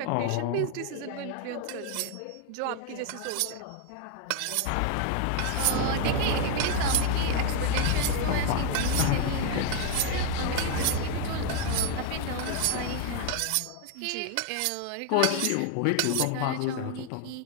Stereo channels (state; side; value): different; both; correlation 0.01